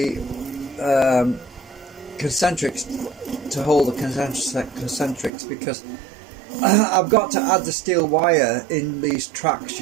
concentrics, to hold the concentrics, because I've got to add the steel wire in these tracks,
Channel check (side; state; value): left; drops out; at 5.3 s